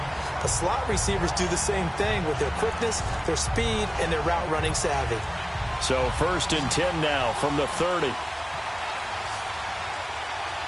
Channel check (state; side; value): identical; both; correlation 1.00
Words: The slot receivers do the same thing with their quickness, their speed, and their route running savvy. So 1st and 10 now from the 30.